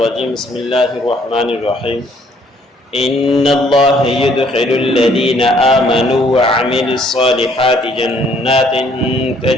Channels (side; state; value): both; normal; correlation 0.64